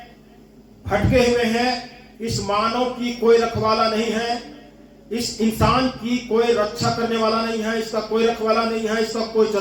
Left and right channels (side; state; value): both; identical; correlation 1.00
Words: भटके हुए हैं। इस मानव की कोई रखवाला नहीं है, इस इंसान की कोई रक्षा करने वाला नहीं है, इसका कोई रखवाला नहीं है, इसका कोई